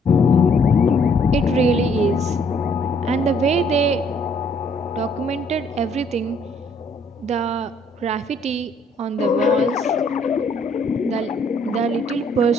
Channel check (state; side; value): normal; both; correlation 0.65